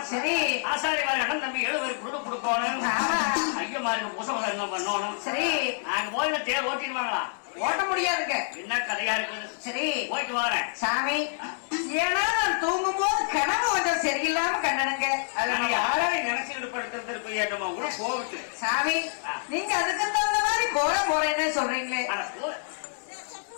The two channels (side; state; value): right; silent; 60 dB below the other